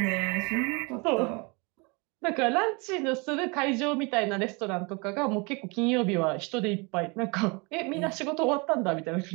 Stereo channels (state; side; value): quieter; left; 29.5 dB